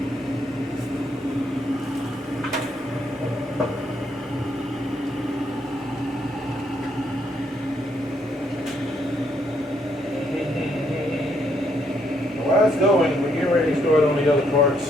While it's going, we're getting ready to start on the other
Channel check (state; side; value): normal; both; correlation 0.73